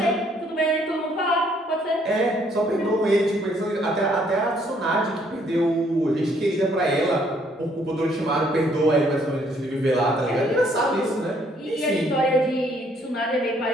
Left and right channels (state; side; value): normal; both; correlation 0.66